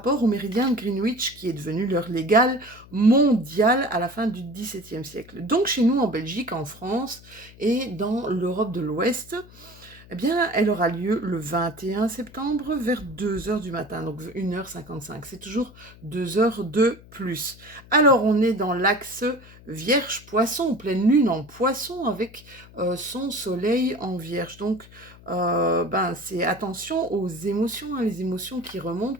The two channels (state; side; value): noise; left; hum, 22 dB below the sound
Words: au méridien de Greenwich qui est devenu l'heure légale mondiale à la fin du XVIIe siècle. Donc chez nous en Belgique, en France et dans l'Europe de l'Ouest, eh bien, elle aura lieu le 21 septembre vers 2 heures du matin, donc 1h55. C'est toujours 2 heures de plus. Alors, on est dans l'axe Vierge-Poisson, pleine lune en Poisson avec son soleil en Vierge. Donc, c'est attention aux émotions, hein, les émotions qui remontent,